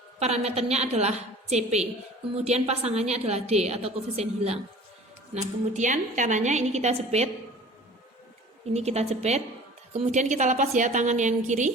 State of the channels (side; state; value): both; normal; correlation 0.44